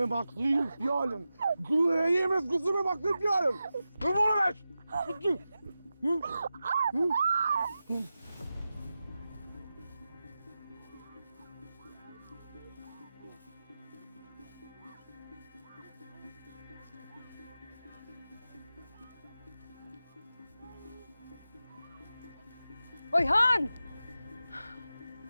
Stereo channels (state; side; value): inverted; both; correlation -0.92